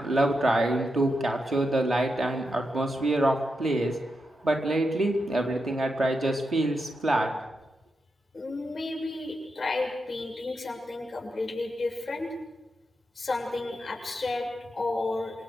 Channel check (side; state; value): both; normal; correlation 0.86